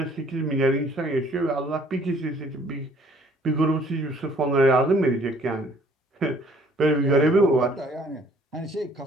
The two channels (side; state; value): both; normal; correlation 0.59